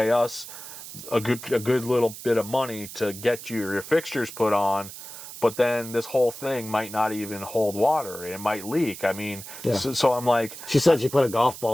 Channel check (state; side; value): noise; right; hiss, 13 dB below the sound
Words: us a good little bit of money to get your fixtures put on, but then this whole thing might not even hold water. It might leak. I mean, yeah. So I'm like... She said she put a golf